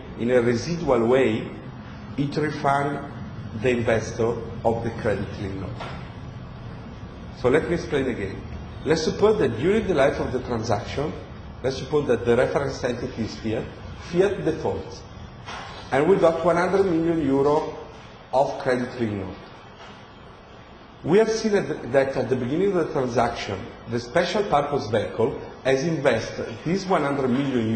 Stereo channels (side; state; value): both; identical; correlation 1.00